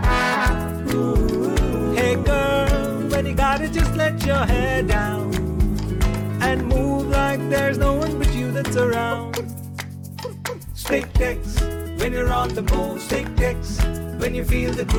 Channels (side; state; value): both; identical; correlation 1.00